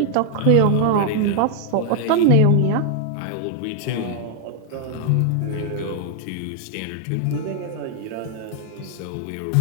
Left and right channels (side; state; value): both; different; correlation 0.00